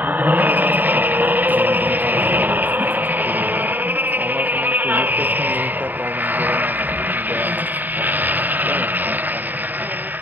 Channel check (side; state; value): left; late; 0.088 ms